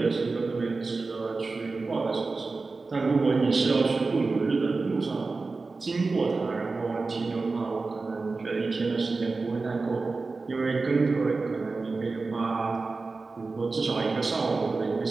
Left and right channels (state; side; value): quieter; left; 3.9 dB